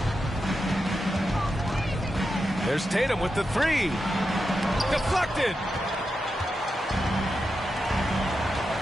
There's Tatum with the 3. Deflected.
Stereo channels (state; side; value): normal; both; correlation 0.88